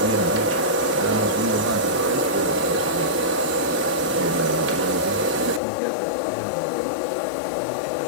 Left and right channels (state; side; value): drops out; right; at 5.6 s